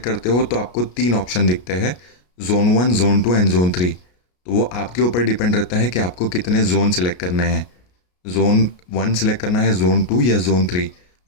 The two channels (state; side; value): late; right; 33 ms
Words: करते हो तो आपको 3 ऑप्शन दिखते हैं, जोन 1, जोन 2 एंड जोन 3। तो वो आपके ऊपर डिपेंड रहता है कि आपको कितने जोन सिलेक्ट करने हैं, जोन 1 सिलेक्ट करना है, जोन 2 या जोन 3।